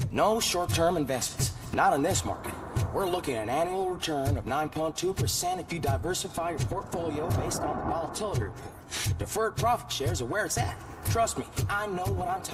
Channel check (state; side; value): identical; both; correlation 1.00